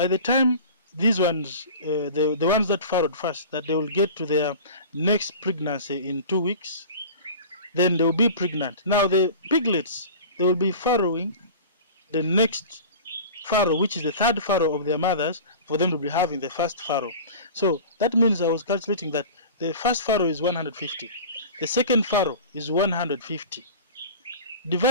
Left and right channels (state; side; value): inverted; both; correlation -0.36